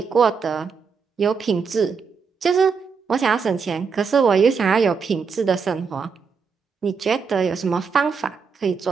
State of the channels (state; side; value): quieter; left; 5.6 dB